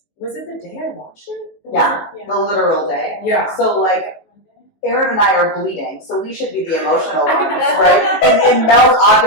it the day I launched it? Yeah, Yeah. the literal day. Yeah. So like, Aryn and I are bleeding, so we should be the emotional ones, right? And Mel's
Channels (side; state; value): right; late; 19 ms